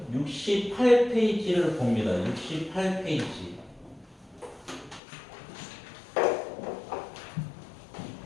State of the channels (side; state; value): right; drops out; at 5.0 s